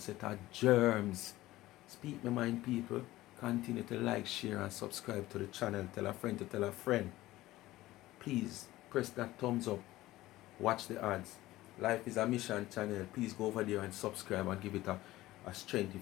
of germs. Speak my mind, people. Continue to like, share and subscribe to the channel. Tell a friend to tell a friend. Please press that thumbs up. Watch the ads. Life is a Mission channel. Please go over there and subscribe and give it a strength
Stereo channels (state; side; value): quieter; right; 16.9 dB